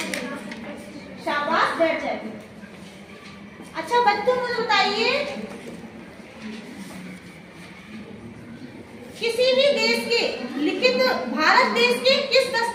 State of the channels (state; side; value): identical; both; correlation 1.00